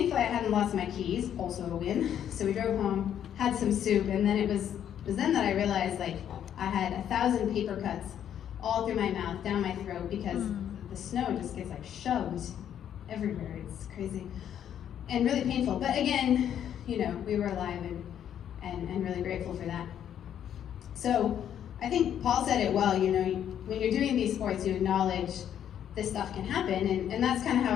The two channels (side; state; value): right; quieter; 9.8 dB